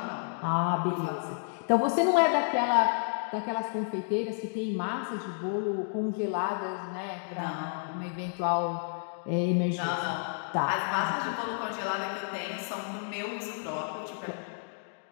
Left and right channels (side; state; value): right; silent; digital silence